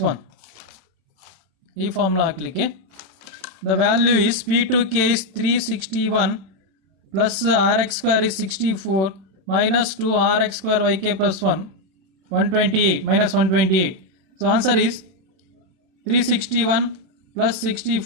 1. ಈ formula ಹಾಕ್ಲಿಕ್ಕೆ the value is p2k is 361 plus rx square is 64 minus 2 rx square yk plus 1 128 minus 128. So answer is 361 plus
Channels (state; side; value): late; left; 32 ms